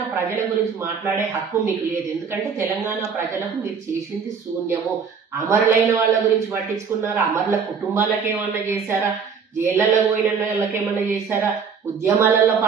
ప్రజల గురించి మాట్లాడే హక్కు మీకు లేదు. ఎందుకంటే తెలంగాణ ప్రజలకు మీరు చేసింది శూన్యము. అమరులైన వాళ్ళ గురించి పట్టించుకున్నారా? అమరుల కుటుంబాలకు ఏమన్నా చేశారా? జైళ్లలో పోయిన వాళ్ళకి ఏమన్నా చేశారా? ఉద్యమాలలో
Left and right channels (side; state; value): left; quieter; 6.1 dB